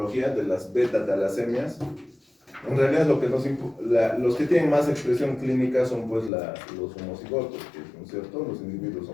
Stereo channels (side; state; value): right; drops out; at 6.3 s